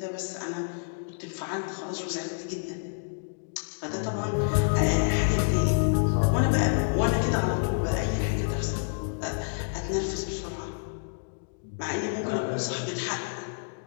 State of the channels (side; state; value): right; silent; digital silence